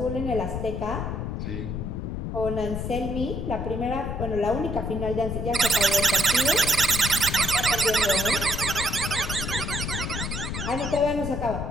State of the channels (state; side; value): noise; left; rumble, 4 dB below the sound